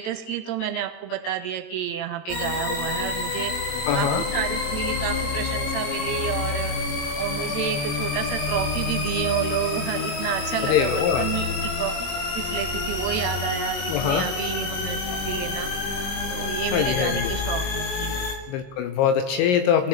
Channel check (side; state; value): right; late; 22 ms